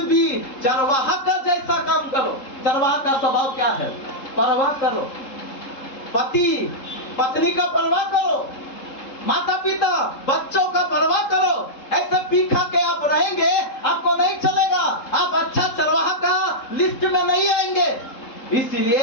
भी चरवाहा का जैसा काम करो। चरवाहा का स्वभाव क्या है? परवाह करो, पति पत्नी का परवाह करो, माता पिता बच्चों का परवाह करो। ऐसे पी खा के आप रहेंगे, आपको नहीं चलेगा। आप अच्छा चरवाहा का लिस्ट में नहीं आएंगे।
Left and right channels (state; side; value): late; right; 3.7 ms